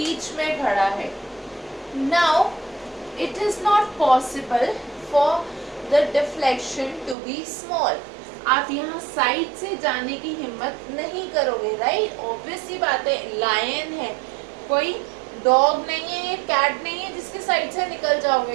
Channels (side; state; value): left; drops out; at 7.2 s